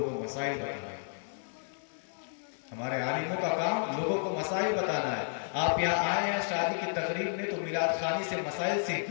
کو مسائل بتانا ہے۔ ہمارے عالموں کا کام لوگوں کو مسائل بتانا ہے۔ آپ یہاں آئے ہیں شادی کی تقریب میں تو میلاد خوانی سے مسائل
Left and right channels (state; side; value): silent; right; digital silence